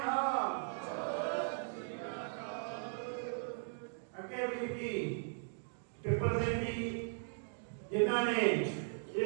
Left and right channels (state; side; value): silent; left; digital silence